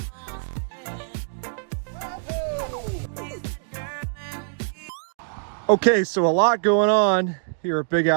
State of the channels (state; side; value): silent; left; digital silence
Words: Okay, so a lot going on here at Big